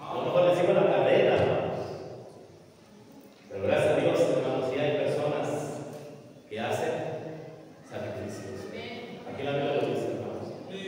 A lo mejor les sigo la carrera, hermanos. Pero gracias a Dios, hermanos, sí hay personas que hacen sacrificios. Aquí la Biblia lo dice, hermanos.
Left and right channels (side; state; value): both; identical; correlation 1.00